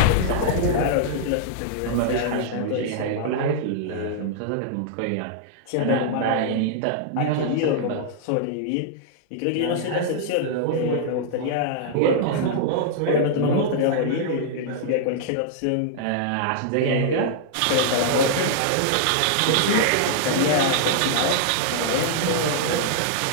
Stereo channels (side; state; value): both; different; correlation -0.01